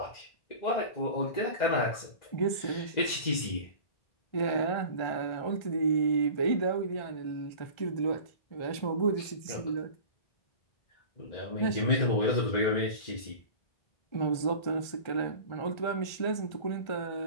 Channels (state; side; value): late; right; 1.3 ms